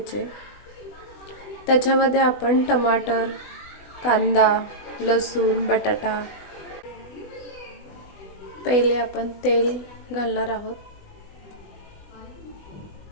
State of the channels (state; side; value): late; right; 20 ms